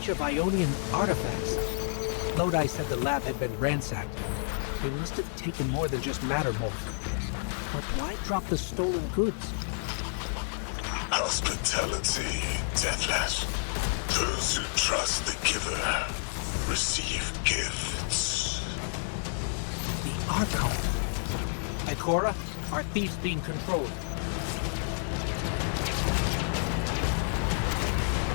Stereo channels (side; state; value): right; silent; digital silence